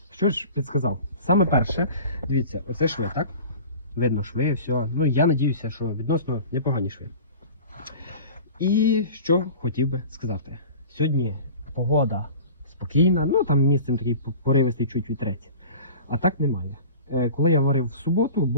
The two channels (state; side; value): inverted; both; correlation -0.39